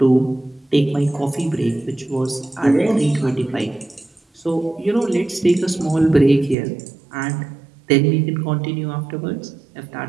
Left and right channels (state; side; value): drops out; left; at 6.6 s